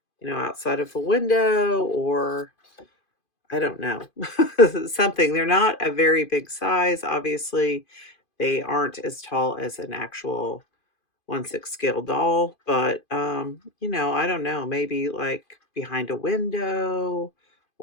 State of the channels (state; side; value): late; right; 2.5 ms